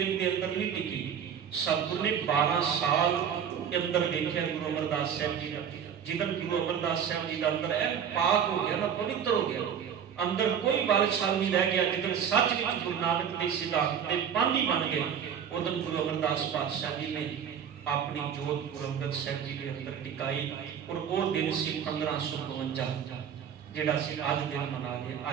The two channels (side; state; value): left; quieter; 8.1 dB